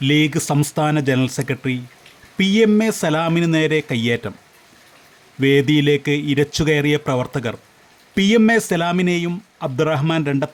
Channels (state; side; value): identical; both; correlation 1.00